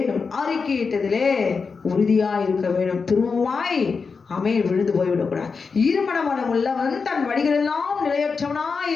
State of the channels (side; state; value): right; quieter; 5.0 dB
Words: அறிக்கையிட்டதிலே உறுதியாய் இருக்க வேண்டும். திரும்பமாய் ஆமென் விழுந்து போய்விடக்கூடாது. ஈரமனம் உள்ளவன் தன் வழிகளெல்லாம் நிலையற்றவனாய்